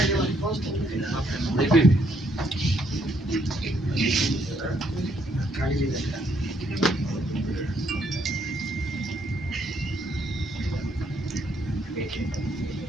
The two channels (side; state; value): both; normal; correlation 0.71